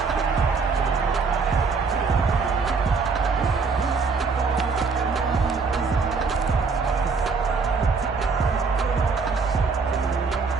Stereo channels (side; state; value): left; quieter; 4.8 dB